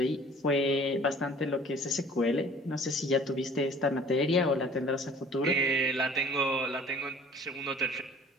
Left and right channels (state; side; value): normal; both; correlation 0.50